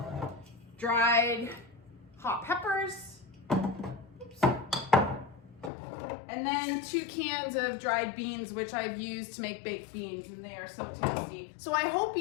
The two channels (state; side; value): drops out; right; at 5.7 s